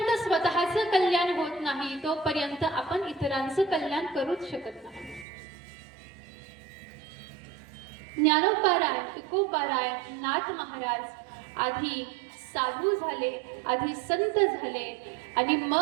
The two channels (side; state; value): left; drops out; at 5.2 s